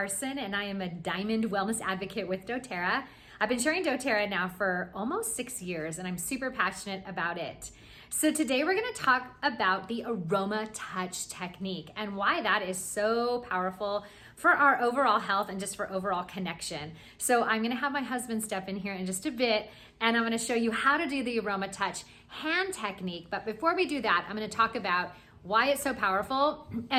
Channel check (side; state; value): both; identical; correlation 1.00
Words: and I am a Diamond Wellness Advocate with doTERRA. I've been sharing doTERRA now for almost 6 years and I'm super passionate about it. So today we're going to talk about the AromaTouch technique and why that is so powerful for our overall health and just for overall connection. So I'm going to have my husband step in here in just a bit and I'm going to show you how to do the AromaTouch hand technique. But before we do that, I'm going to talk about why it's so powerful